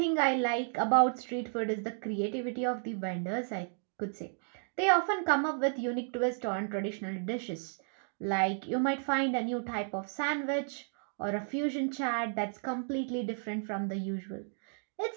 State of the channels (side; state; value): left; silent; digital silence